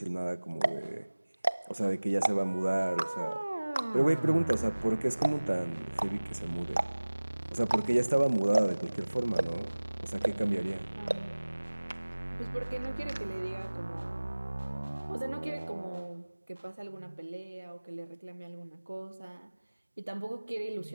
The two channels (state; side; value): inverted; both; correlation -1.00